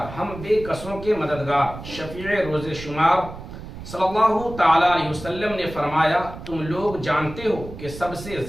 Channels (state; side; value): noise; right; rumble, 12 dB below the sound